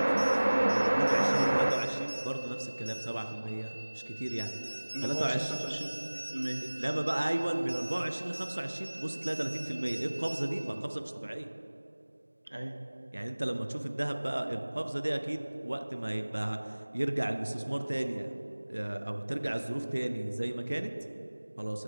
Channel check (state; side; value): inverted; both; correlation -1.00